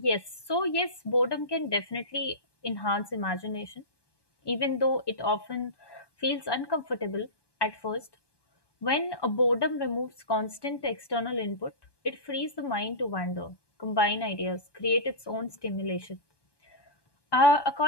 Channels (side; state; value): right; late; 1.2 ms